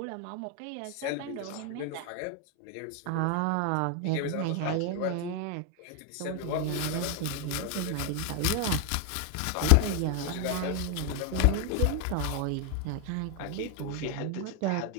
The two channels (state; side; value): different; both; correlation 0.01